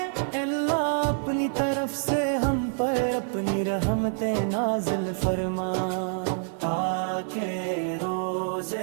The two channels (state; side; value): silent; left; 55 dB below the other